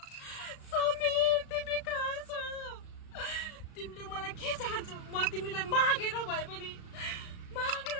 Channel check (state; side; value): late; right; 35 ms